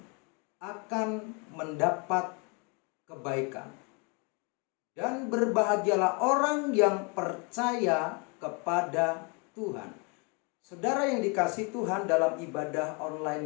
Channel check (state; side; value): quieter; right; 33.0 dB